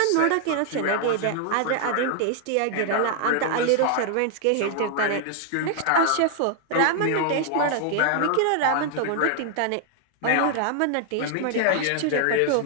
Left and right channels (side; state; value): both; different; correlation 0.00